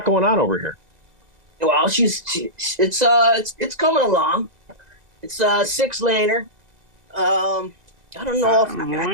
going on over here? Well, it's coming along. It's a 6-laner. I don't know if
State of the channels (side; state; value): left; late; 2.0 ms